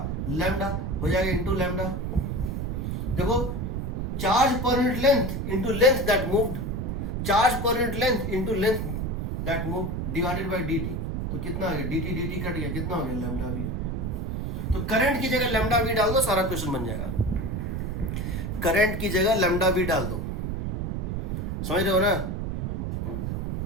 लैम्डा हो जाएगा इंटू लैम्डा, देखो, charge per unit length into length that moved, charge per unit length into length that moved divided by dt, तो कितना आ गया, dt कट गया, कितना हो गया, लैम्डा v। तो करंट की जगह लैम्डा v डाल दो, सारा क्वेश्चन बन जाएगा, करंट की जगह लैम्डा v डाल दो, समझ रहे हो ना।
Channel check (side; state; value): right; noise; rumble, 2 dB below the sound